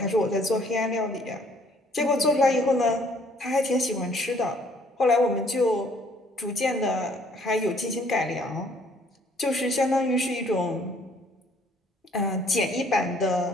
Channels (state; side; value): normal; both; correlation 0.61